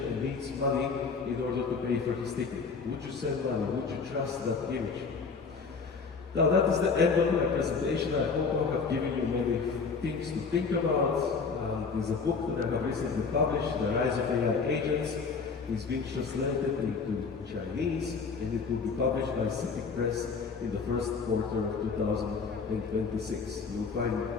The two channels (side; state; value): right; quieter; 5.0 dB